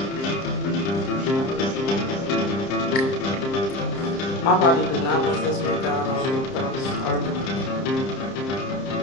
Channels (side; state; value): right; late; 30 ms